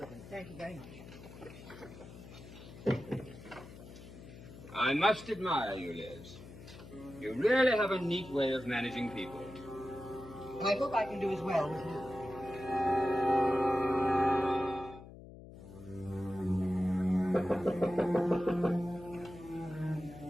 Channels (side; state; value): left; noise; hum, 16 dB below the sound